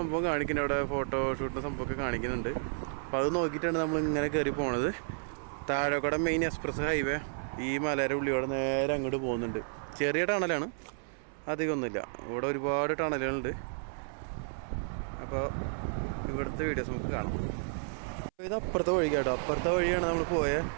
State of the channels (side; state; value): left; silent; 56 dB below the other